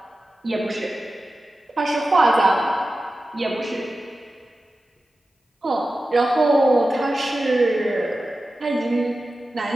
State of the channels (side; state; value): both; normal; correlation 0.94